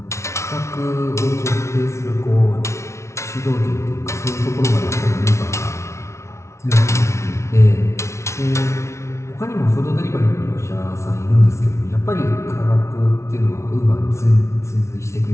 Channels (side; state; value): right; late; 0.13 ms